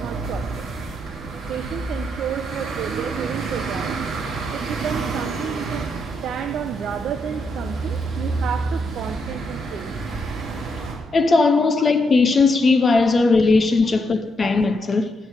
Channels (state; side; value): normal; both; correlation 0.79